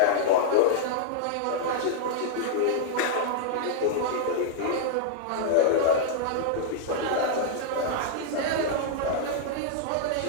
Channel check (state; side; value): different; both; correlation -0.01